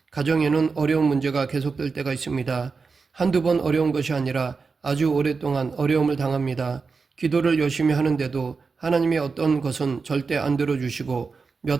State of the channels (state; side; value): quieter; left; 4.7 dB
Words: 가정에는 어려운 문제가 계속될 때가 있습니다. 한두 번 어려운 것이 아니라 아주 오랫동안 어려움을 당합니다. 기도를 열심히 하는데도 하나님의 어떤 것은 절대 안 들어주시고